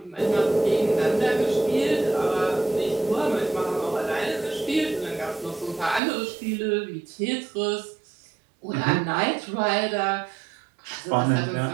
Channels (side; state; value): left; drops out; at 6.0 s